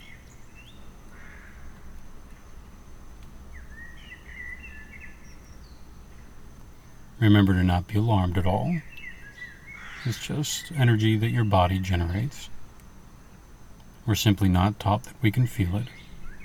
Remember to not be alarmed at all. It's just energy that your body generates. We're simply not taught that we can feel it.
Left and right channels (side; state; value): both; identical; correlation 1.00